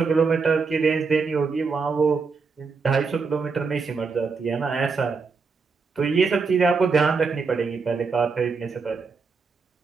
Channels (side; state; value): left; quieter; 4.9 dB